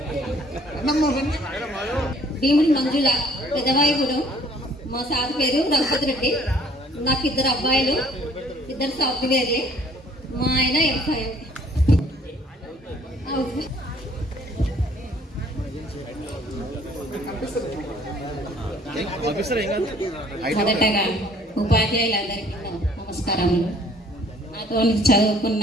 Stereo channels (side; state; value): both; normal; correlation 0.58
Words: Bhimudi Manjula పెదవాయిగూడెం. మా సార్ పేరు రఘుపతి రెడ్డి. నాకు 2 అబ్బాయిలు, 2 సాఫ్ట్వేర్లే. మా ఆయన ఎంఫై. మొదటగా ఉపాధ్యాయులందరికీ నమస్కారములు. నాతో చదువుకున్న